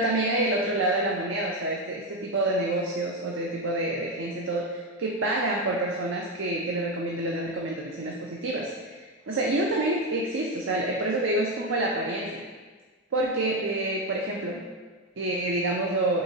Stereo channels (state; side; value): normal; both; correlation 0.11